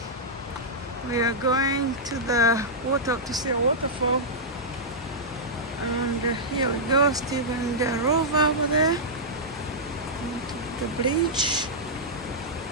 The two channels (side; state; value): both; normal; correlation -0.10